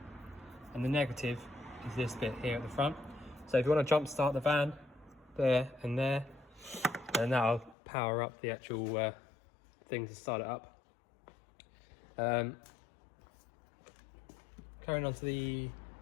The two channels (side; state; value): right; drops out; at 7.8 s